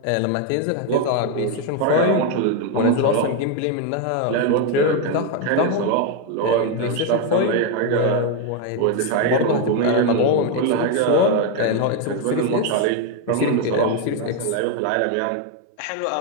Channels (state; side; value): different; both; correlation 0.01